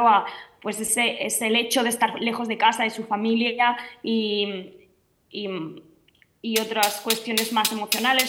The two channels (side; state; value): both; identical; correlation 1.00